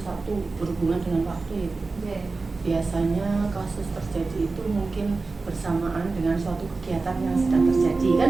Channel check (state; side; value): quieter; left; 3.8 dB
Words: berhubungan dengan waktu itu. Biasanya kasus terjadi itu mungkin bersamaan dengan suatu kegiatan yang sedang terjadi